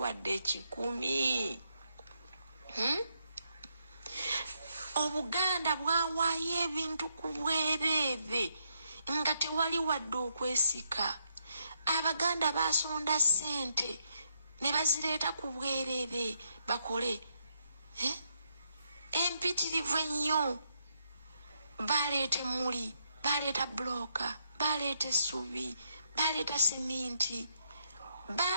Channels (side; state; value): both; inverted; correlation -0.78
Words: 10. Obuganda bwawaayo ebintu ku bwereere nga tewali wadde okwesika. Abaganda basonda ssente ne bazireeta ku bwereere bakole empitirivu ennyo. Baleeta emmuli, baleeta bloka, baleeta essubi, baleeta seminti,